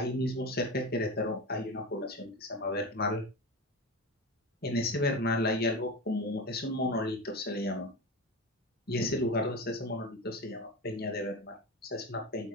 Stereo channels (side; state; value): both; normal; correlation 0.24